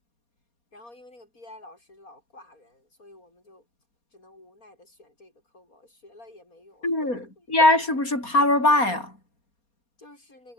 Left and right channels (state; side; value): late; right; 4.2 ms